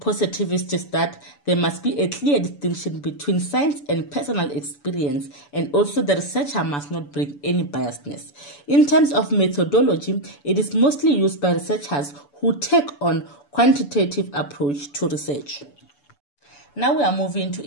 is that there must be a clear distinction between science and personal experience, and also the researcher must not bring any biasness. In terms of methodology, it is mostly used by researchers who take on quantitative approach to research. Now we are moving to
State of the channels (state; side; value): late; right; 7.0 ms